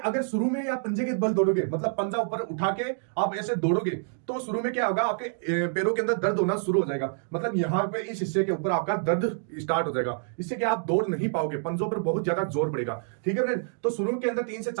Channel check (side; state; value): left; silent; digital silence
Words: शुरू में आप पंजे के बल दौड़ोगे, मतलब पंजा ऊपर उठा के आप ऐसे दौड़ोगे तो शुरू में क्या होगा, आपके पैरों के अंदर दर्द होना शुरू हो जाएगा। मतलब यहाँ पे इस हिस्से के ऊपर आपका दर्द स्टार्ट हो जाएगा। इससे क्या आप दौड़ नहीं पाओगे, पंजों पर बहुत ज्यादा जोर पड़ेगा। ठीक है फ्रेंड्स, तो शुरू के अंदर 3 से